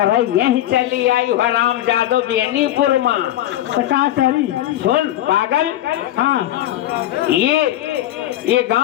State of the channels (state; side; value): quieter; right; 13.6 dB